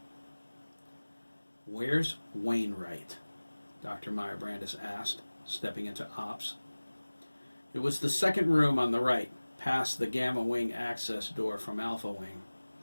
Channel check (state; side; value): inverted; both; correlation -1.00